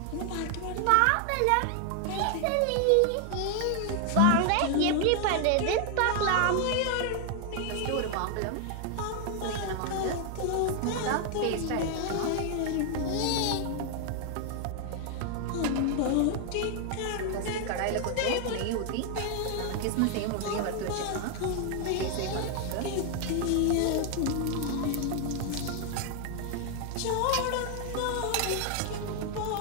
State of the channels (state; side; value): different; both; correlation 0.00